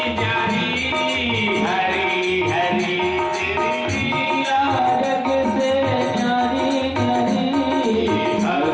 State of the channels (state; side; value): identical; both; correlation 1.00